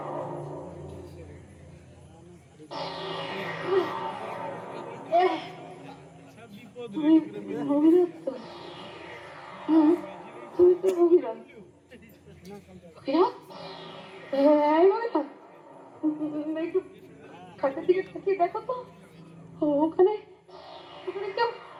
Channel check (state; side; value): identical; both; correlation 1.00